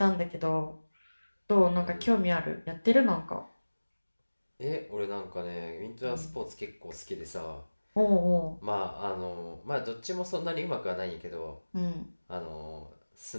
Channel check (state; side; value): inverted; both; correlation -1.00